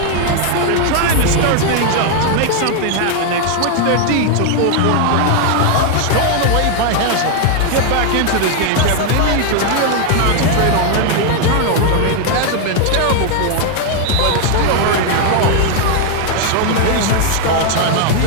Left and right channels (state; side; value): different; both; correlation 0.01